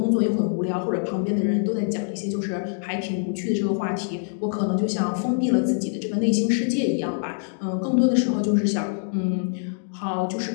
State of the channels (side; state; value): right; silent; digital silence